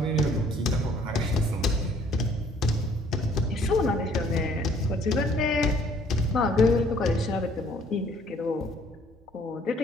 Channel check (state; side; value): normal; both; correlation 0.60